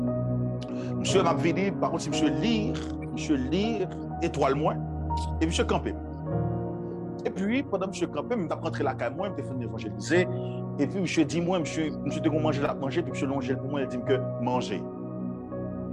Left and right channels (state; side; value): identical; both; correlation 1.00